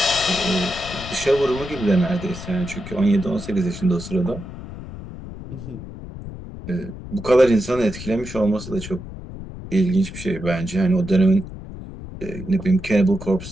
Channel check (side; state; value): left; noise; rumble, 12 dB below the sound